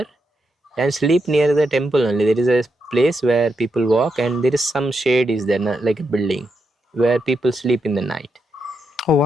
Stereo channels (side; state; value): both; normal; correlation 0.83